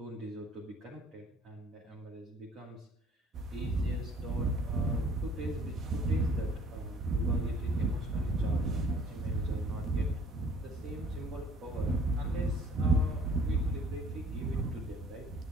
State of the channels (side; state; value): both; normal; correlation 0.55